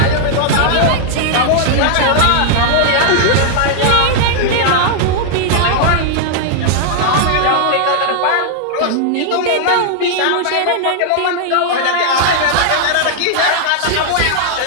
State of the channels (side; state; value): both; different; correlation -0.01